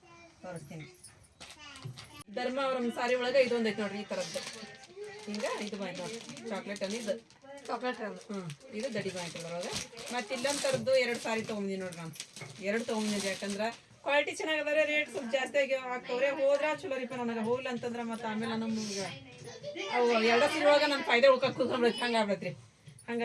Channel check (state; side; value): identical; both; correlation 1.00